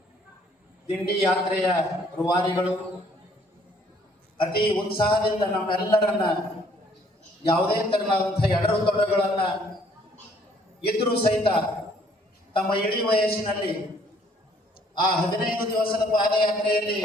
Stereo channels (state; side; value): normal; both; correlation 0.62